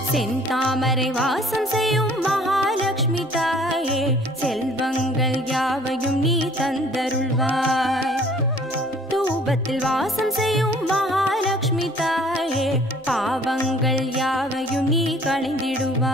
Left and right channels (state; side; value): normal; both; correlation 0.55